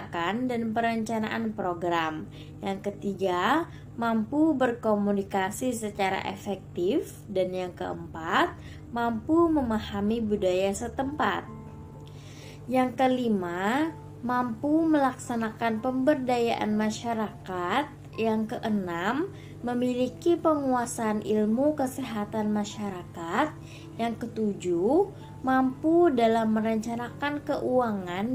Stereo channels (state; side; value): identical; both; correlation 1.00